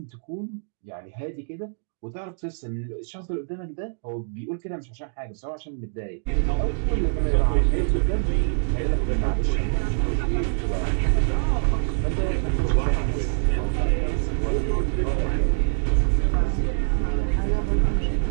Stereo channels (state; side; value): silent; left; digital silence